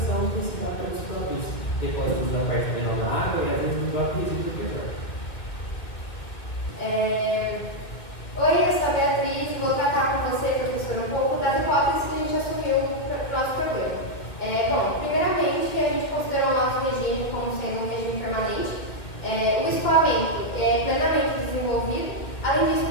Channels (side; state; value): right; late; 1.9 ms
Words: que se dá pelos próprios depósitos da parte menor da água e às vezes do próprio resíduo do petróleo. Oi, eu sou a Beatriz, vou tratar com você, professor, um pouco das hipóteses que a gente assumiu para o nosso problema. Bom, primeiramente, a gente considerou o nosso regime como sendo um regime permanente. O escoamento é plenamente desenvolvido. Além disso,